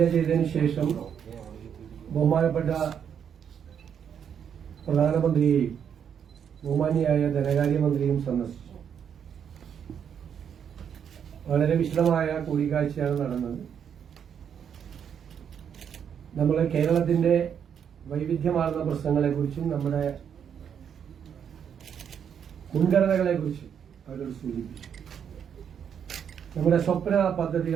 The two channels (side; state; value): left; quieter; 8.1 dB